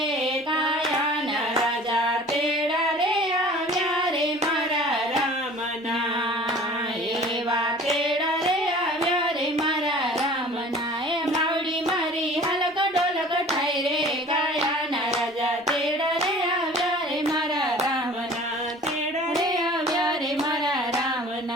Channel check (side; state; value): both; normal; correlation 0.45